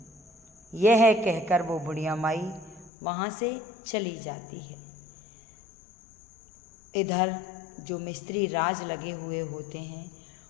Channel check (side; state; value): right; drops out; at 2.9 s